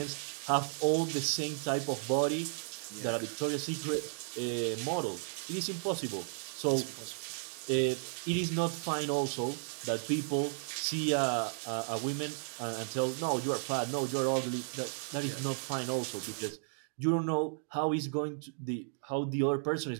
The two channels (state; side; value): silent; left; digital silence